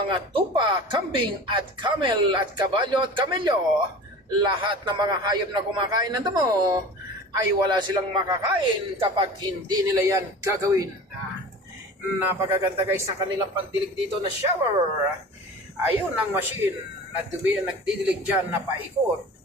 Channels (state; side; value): normal; both; correlation 0.38